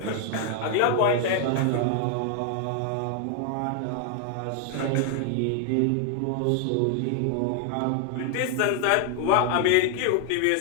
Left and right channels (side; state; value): both; different; correlation 0.00